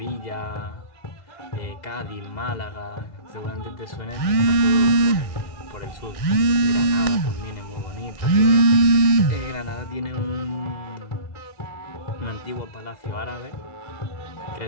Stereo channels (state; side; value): late; right; 1.6 ms